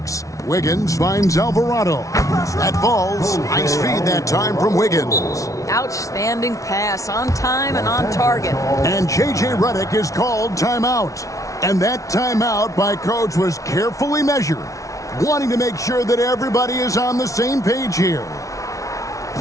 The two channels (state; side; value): late; right; 0.16 ms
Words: Wiggins finds Alvarado. That falls. Nice feed that time from Wiggins. Outstanding pass, on time and on target. And J.J. Redick is called timeout. And that timeout by coach was carefully measured, wanting to make sure that everybody is on the same page here.